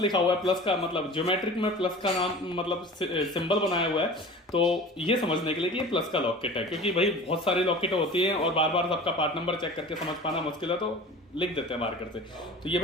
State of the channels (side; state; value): both; normal; correlation 0.39